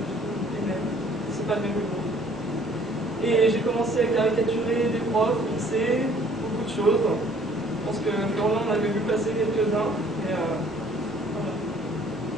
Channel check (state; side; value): normal; both; correlation 0.58